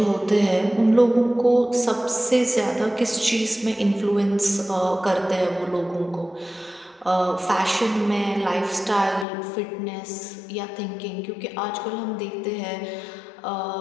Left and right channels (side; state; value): right; drops out; at 9.2 s